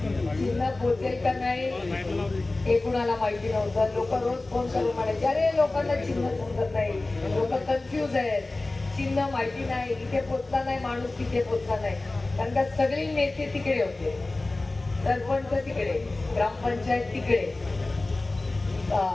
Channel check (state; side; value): quieter; right; 3.1 dB